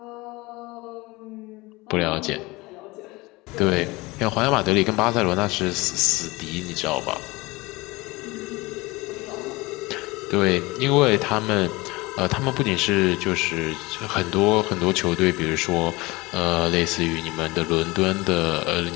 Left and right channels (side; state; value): right; quieter; 22.3 dB